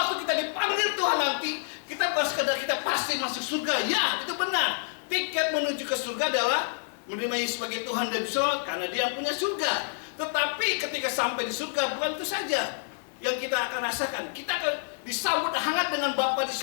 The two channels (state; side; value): silent; right; 59 dB below the other